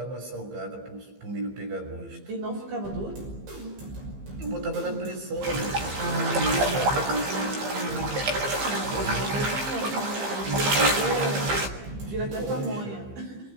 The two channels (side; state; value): left; late; 15 ms